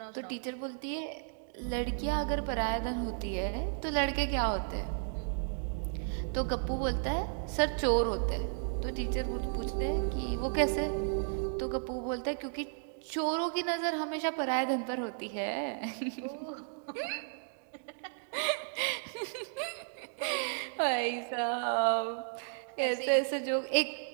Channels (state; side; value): silent; left; digital silence